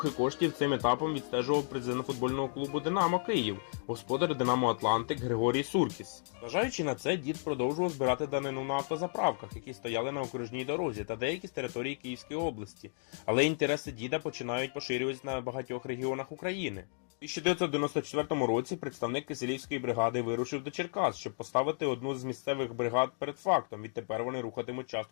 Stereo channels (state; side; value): silent; right; digital silence